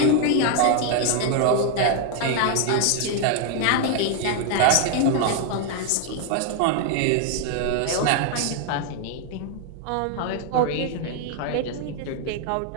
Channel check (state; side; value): different; both; correlation 0.00